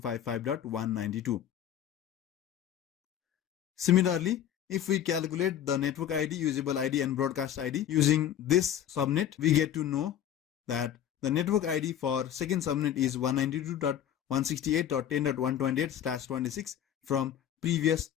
Similarly, If we calculate the network ID, usable ID and broadcast ID using this subnet, we get to know that the network ID for second subnet is 192.168.10.128/26 from previous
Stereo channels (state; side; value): quieter; right; 10.3 dB